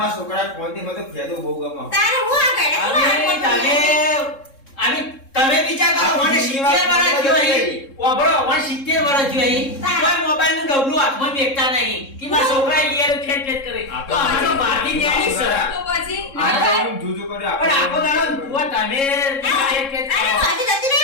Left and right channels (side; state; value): right; late; 3.7 ms